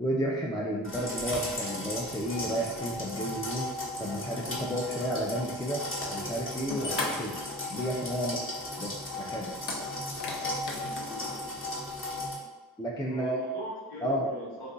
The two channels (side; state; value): both; normal; correlation 0.39